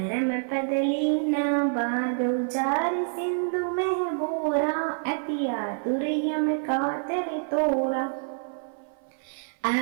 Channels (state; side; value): silent; left; 55 dB below the other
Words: पद लीना बाग उचार सिंधु में बोरा अति आतुर यम कातर तोरा